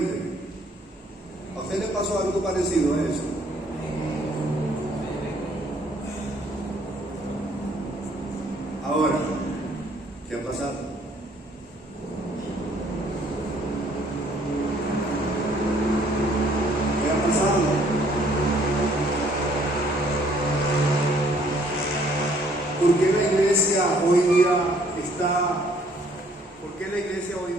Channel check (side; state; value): both; normal; correlation 0.62